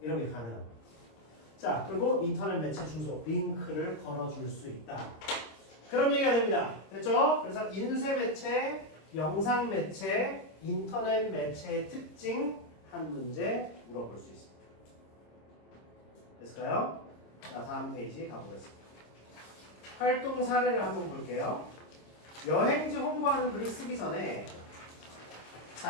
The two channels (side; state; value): right; late; 26 ms